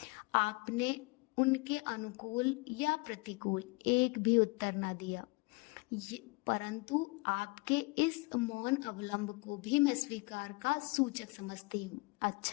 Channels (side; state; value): right; quieter; 27.4 dB